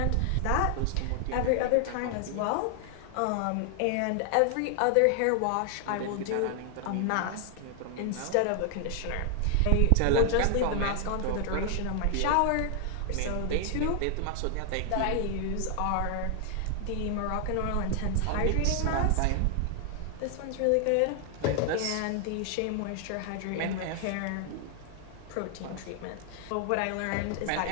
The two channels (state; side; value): different; both; correlation 0.00